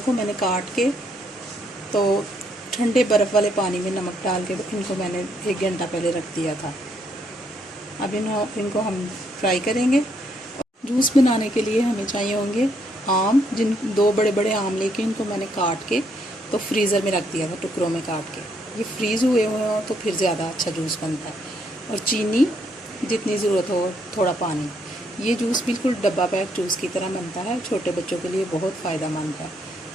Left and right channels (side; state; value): both; normal; correlation 0.73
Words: को मैंने काट के तो ठंडे बर्फ़ वाले पानी में नमक डाल के इनको मैंने 1 घंटा पहले रख दिया था। अब इनको हम फ्राई करेंगे। जूस बनाने के लिए हमें चाहिए होंगे आम, 2 बड़े बड़े आम लेके इनको मैंने काट के तो फ्रीज़र में रख दिया था, टुकड़ों में काट के। ये फ्रीज़ हुए हों तो फिर ज़्यादा अच्छा जूस बनता है। और चीनी जितनी ज़रूरत हो, थोड़ा पानी। ये जूस बिल्कुल डब्बा पैक जूस की तरह बनता है। छोटे बच्चों के लिए बहुत फ़ायदेमंद है।